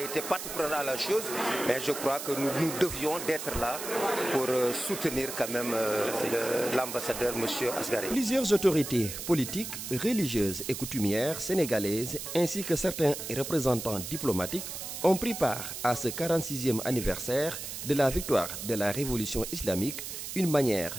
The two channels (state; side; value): noise; right; hiss, 7 dB below the sound